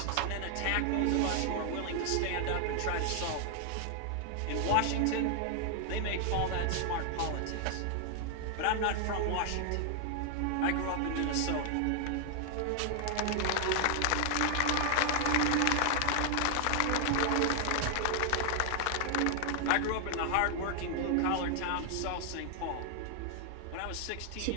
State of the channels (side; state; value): both; different; correlation 0.00